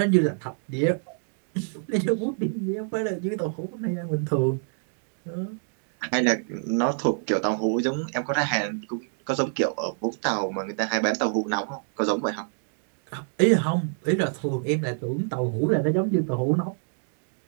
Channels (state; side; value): silent; left; 60 dB below the other